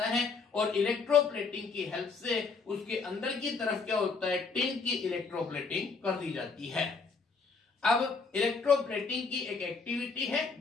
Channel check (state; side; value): quieter; right; 4.6 dB